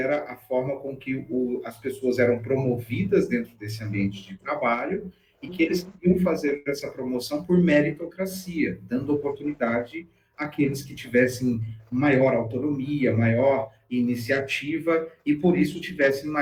a forma com que as pessoas eram promovidas dentro desse ambiente de trabalho e que eles queriam fazer essa promoção por meritocracia, dando oportunidade aqueles que tivessem maior autonomia, maior iniciativa e, por isso, tivessem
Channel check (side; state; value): both; identical; correlation 1.00